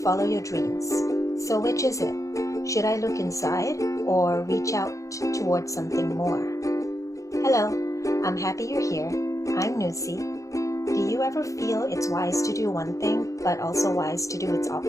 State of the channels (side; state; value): right; late; 0.15 ms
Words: follow your dreams. So which is it? Should I look inside or reach out towards something more? Hello, I'm happy you're here. I'm Nusi. Do you ever feel it's wise to do one thing, but also wise to do its